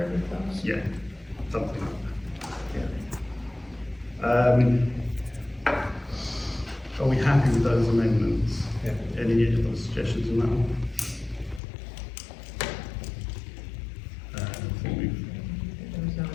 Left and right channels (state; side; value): drops out; right; at 11.6 s